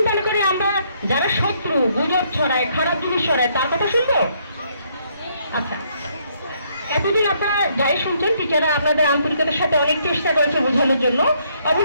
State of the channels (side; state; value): both; inverted; correlation -0.70